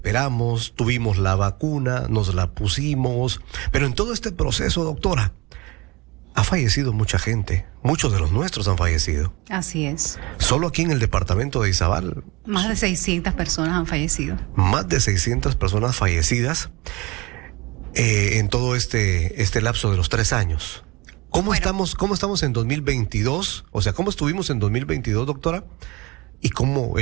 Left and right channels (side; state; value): left; quieter; 24.0 dB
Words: tuvimos la vacuna, nos la pusimos, pero en todo este proceso, doctora, ha fallecido mucha gente. Muchos de los nuestros han fallecido. Así es. Solo aquí en el departamento de Izabal. Más de 600 personas han fallecido. Más de 600 personas fallecidas en todo este lapso de los 3 años. ¿Cómo estamos en 2022? O sea, ¿cómo estuvimos en 2022, doctora? ¿Y cómo